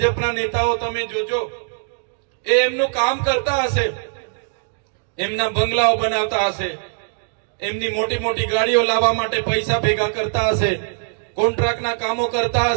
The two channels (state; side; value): silent; left; digital silence